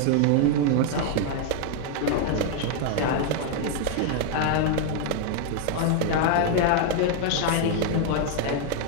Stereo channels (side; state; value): both; different; correlation 0.00